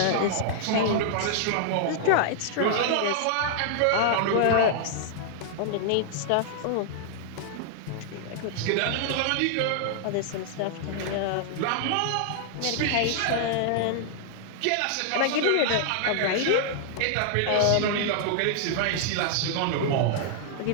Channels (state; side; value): different; both; correlation -0.01